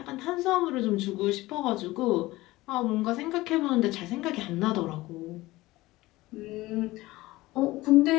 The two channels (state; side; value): quieter; right; 18.9 dB